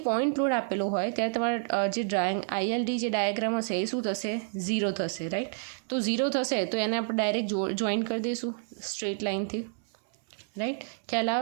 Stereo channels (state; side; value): silent; left; 58 dB below the other